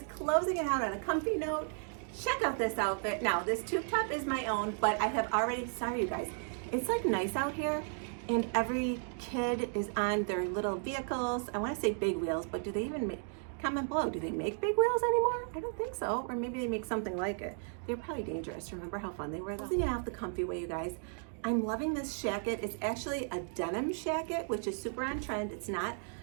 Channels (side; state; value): left; silent; 55 dB below the other